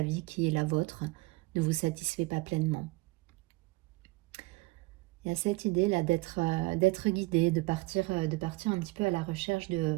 vie qui est la vôtre ne vous satisfait pas pleinement. Il y a cette idée là d'être guidé, de partir un petit peu à la recherche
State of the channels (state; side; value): quieter; left; 22.9 dB